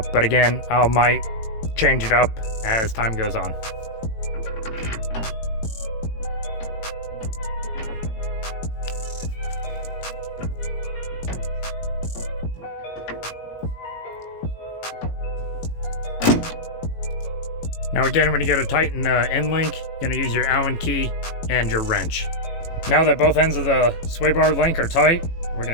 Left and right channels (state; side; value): late; right; 18 ms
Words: again, I might change it up as time goes on. Now again, when you go to tighten the end link, you're gonna use your Allen key and your wrench. Now that both ends of the sway bar link are tight, we're